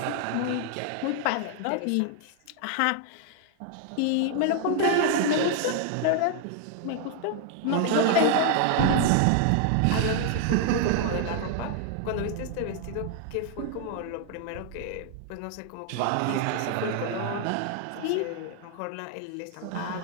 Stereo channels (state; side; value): different; both; correlation 0.00